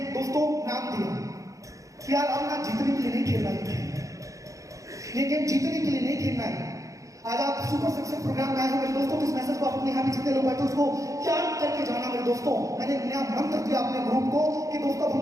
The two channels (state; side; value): late; left; 0.16 ms